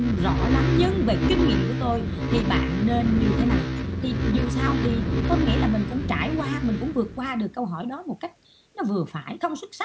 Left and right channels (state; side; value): identical; both; correlation 1.00